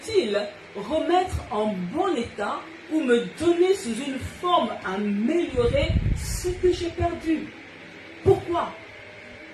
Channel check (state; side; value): identical; both; correlation 1.00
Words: remettre en bon état ou me donner sous une forme améliorée ce que j'ai perdu? Pourquoi?